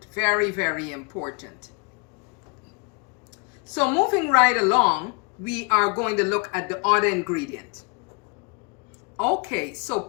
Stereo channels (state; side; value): quieter; right; 32.2 dB